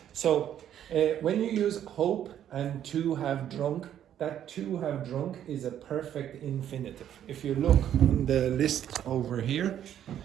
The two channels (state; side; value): quieter; left; 10.4 dB